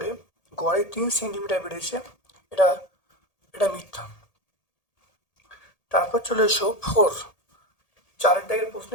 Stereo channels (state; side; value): late; right; 1.8 ms